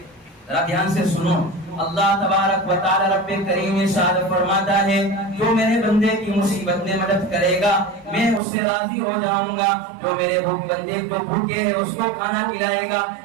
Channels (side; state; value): left; drops out; at 8.4 s